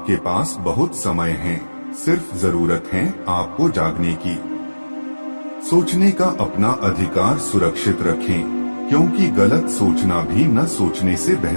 पास बहुत समय है। सिर्फ जरूरत है आपको जागने की। सोचने का अपना अधिकार सुरक्षित रखें, क्योंकि गलत सोचना भी न सोचने से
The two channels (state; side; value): inverted; both; correlation -1.00